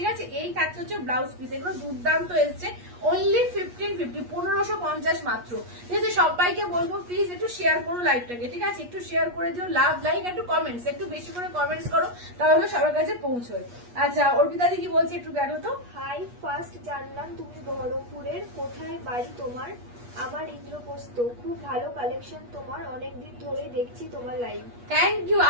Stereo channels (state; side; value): late; left; 8.3 ms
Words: আছে। এই থাকছে হচ্ছে ব্লাউজ পিস, এগুলো দুর্দান্ত এসছে। অনলি 1550, 1550 মাত্র, ঠিক আছে। সবাইকে বলবো প্লিজ একটু শেয়ার করো লাইভটাকে, ঠিক আছে। একটু শেয়ার করে দিও, লাভ লাইক, একটু কমেন্টস, একটু বেশি করে কমেন্টস করো, তাহলে সবার কাছে পৌঁছয়। আচ্ছা অর্পিতা দি কি বলছে একটু দেখো তো। হাই, ফার্স্ট জানলাম তুমি বহরমপুরের, কোথায় বাড়ি তোমার? আমার ইন্দ্রপ্রস্থ, খুব ভালো কালেকশন তোমার, অনেকদিন ধরে দেখছি তোমার লাইভ। থ্যাংক ইউ,